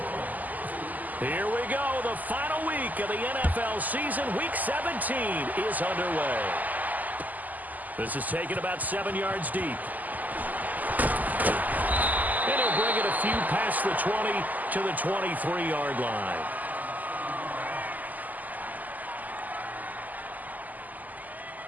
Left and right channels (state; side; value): late; left; 0.081 ms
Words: Here we go. The final week of the NFL season. Week 17 is underway. This is taken about 7 yards deep. And he'll bring it a few past the 20 to the 23-yard line.